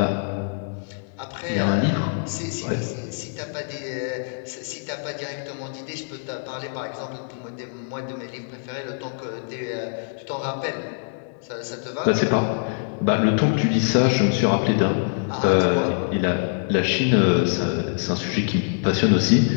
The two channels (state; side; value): silent; right; digital silence